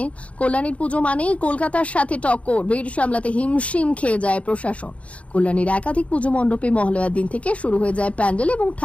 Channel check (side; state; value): right; late; 0.064 ms